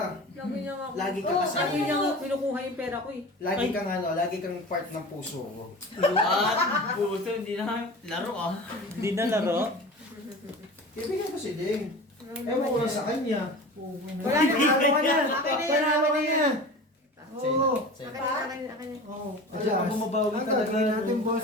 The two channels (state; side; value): normal; both; correlation 0.35